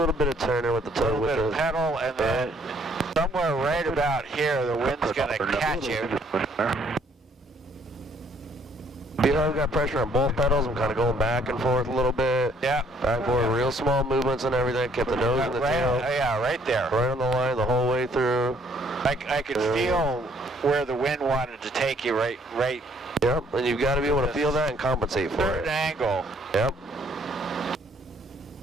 bit of turning with the a toe, little with bit the of pedal, and then somewhere right about here, the wind's gonna catch you. feel I've got pressure on both pedals. I'm kind of going back and forth a little bit. Yeah. Back and forth, real small movements and everything. Kept the nose and the tail. Yeah, right there. Right on the line the whole way through. I could feel where the wind wanted to take you right. Yep, and you've got to be able to feel that and compensate for Certain it. angle. Yep.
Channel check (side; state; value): both; normal; correlation 0.64